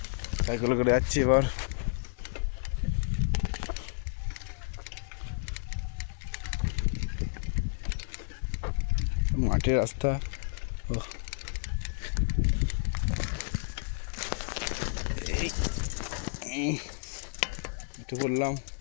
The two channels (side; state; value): right; silent; digital silence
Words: সাইকেল করে যাচ্ছি এবার। মাঠের রাস্তা, একটু বললাম